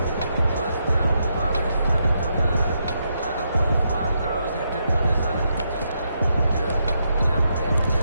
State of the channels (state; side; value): inverted; both; correlation -0.80